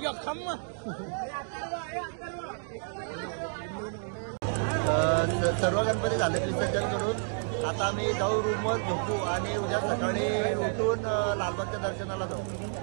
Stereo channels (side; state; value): left; silent; 58 dB below the other